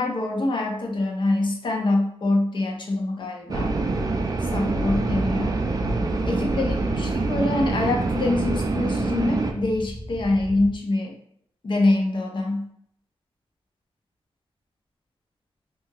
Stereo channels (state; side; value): normal; both; correlation 0.86